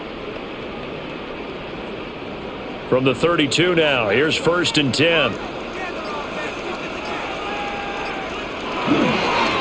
From the 32 now, here's 1st and 10.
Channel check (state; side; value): identical; both; correlation 1.00